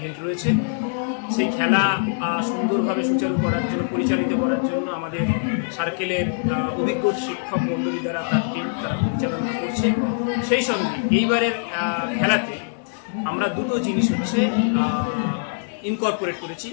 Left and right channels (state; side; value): silent; right; digital silence